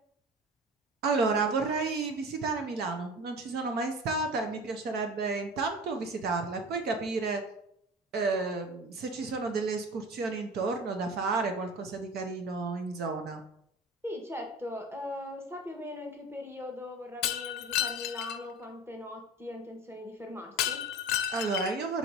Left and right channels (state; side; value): normal; both; correlation 0.36